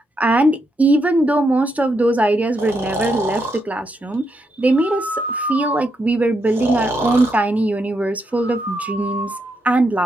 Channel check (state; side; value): normal; both; correlation 0.80